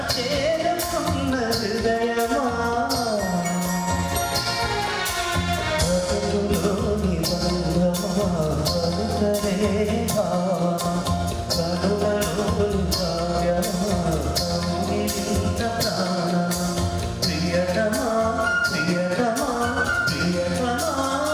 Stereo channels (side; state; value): both; identical; correlation 1.00